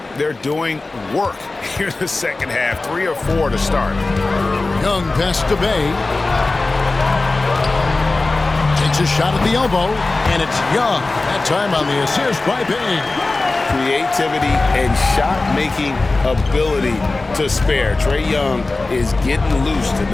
They're doing work here in the second half. 3 or 4 to start. Young pass to Bay. Takes a shot at the elbow, and it's Young. That time on the assist by Bay. Creativity and shot-making ability to spare. Trae Young is getting loose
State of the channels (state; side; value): quieter; right; 3.3 dB